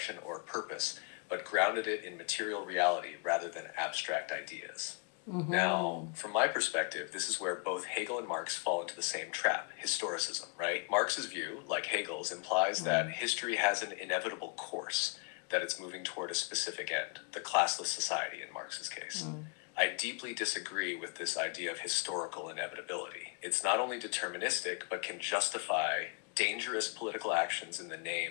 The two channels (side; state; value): right; quieter; 35.8 dB